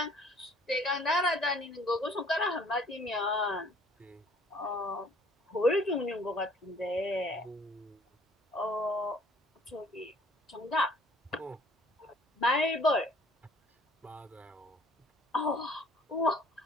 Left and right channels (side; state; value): both; normal; correlation 0.56